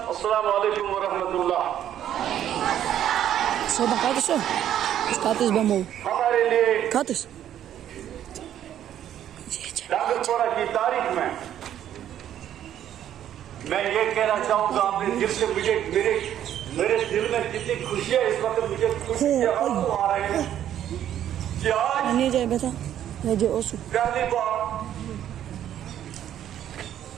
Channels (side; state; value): left; quieter; 10.8 dB